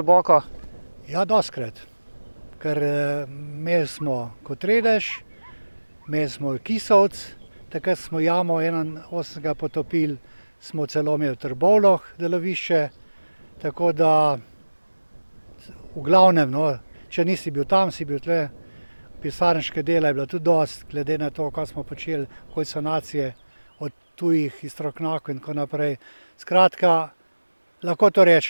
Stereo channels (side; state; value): both; inverted; correlation -1.00